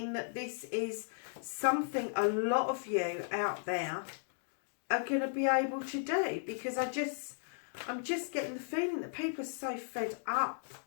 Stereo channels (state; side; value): silent; right; digital silence